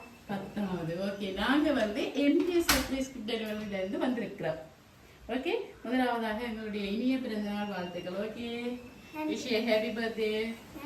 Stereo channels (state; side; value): identical; both; correlation 1.00